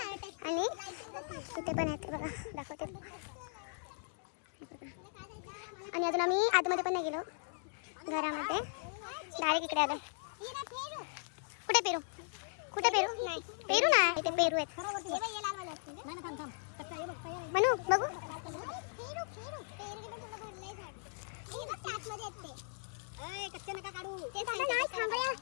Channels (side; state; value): right; silent; digital silence